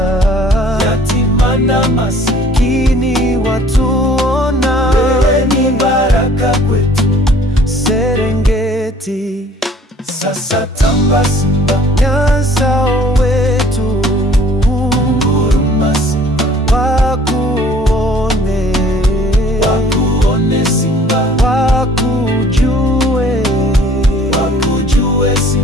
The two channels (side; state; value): both; normal; correlation 0.54